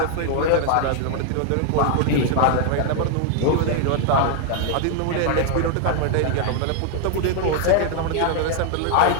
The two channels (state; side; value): different; both; correlation 0.00